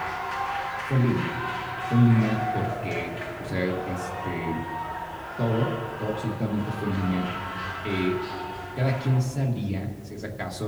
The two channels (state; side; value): identical; both; correlation 1.00